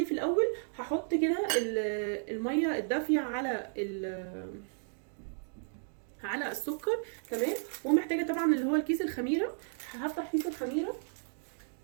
في الاول؟ هحط كده الميه الدافيه على السكر، تمام. ومحتاجه طبعا اللي هو الكيس الخميره. هفتح كيس الخميره.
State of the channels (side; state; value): left; silent; digital silence